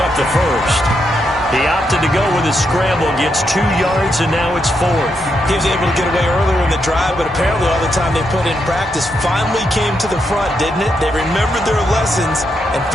up the first. He opted to go with his scramble, gets 2 yards, and now it's 4th. He was able to get away earlier in the drive, but apparently all the time they put in practice finally came to the front, didn't it? They remembered their lessons and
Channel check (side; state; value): both; normal; correlation 0.81